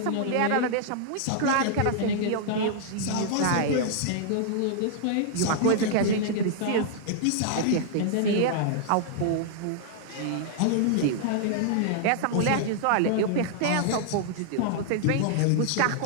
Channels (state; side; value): different; both; correlation -0.01